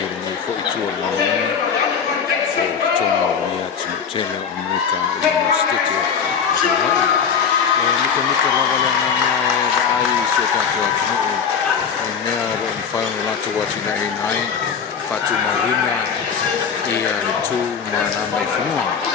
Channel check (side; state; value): right; quieter; 6.8 dB